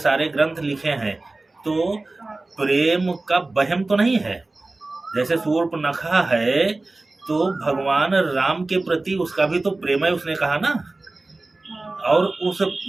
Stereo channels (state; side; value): quieter; left; 3.1 dB